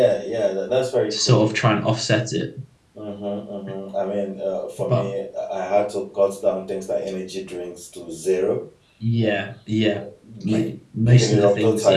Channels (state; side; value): identical; both; correlation 1.00